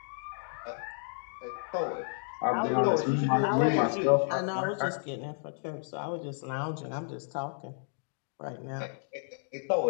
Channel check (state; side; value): silent; right; 57 dB below the other